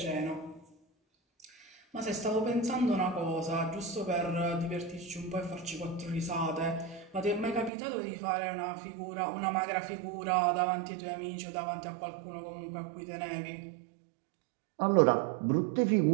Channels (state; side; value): drops out; left; at 7.7 s